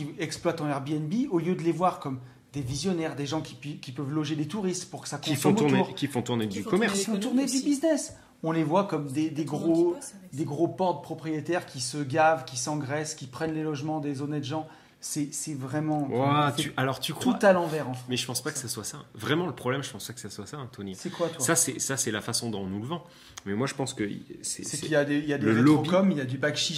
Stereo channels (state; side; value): identical; both; correlation 1.00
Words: exploitent en Airbnb, au lieu de les voir comme des visionnaires, des gens qui peuvent loger des touristes pour que ça Qui consomme font autour, tourner du font commerce. ils font l'économie tourner du aussi. business. on les voit comme des Tout le monde y gros, bosse avec ça. des gros portes propriétaires qui se gavent, qui s'engraissent, qui prennent les logements des honnêtes gens. C'est vraiment Ouah, c'est alors tu tout crois. à l'envers en fait. Mais je pense pas que ça soit ça. Vraiment, le problème, je pense pas que ça soit ça, Tony. C'est quoi toi? Ça, c'est la façon dont on nous le vend. Mais moi, je pense que C'est c'est qu'il y a des le rétrocoms, il y a du bac